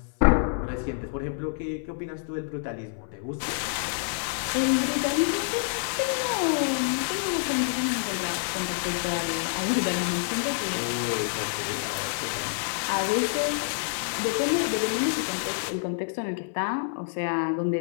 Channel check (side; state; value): right; silent; digital silence